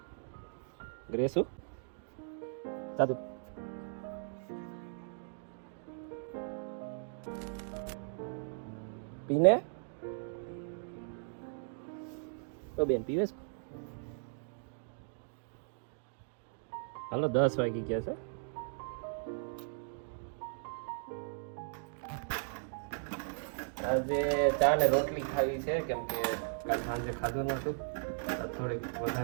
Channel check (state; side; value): silent; left; digital silence